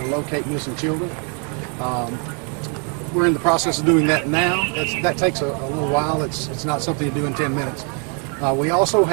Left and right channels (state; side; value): quieter; left; 38.1 dB